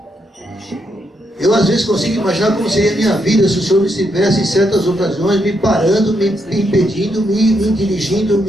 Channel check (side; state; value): both; normal; correlation 0.79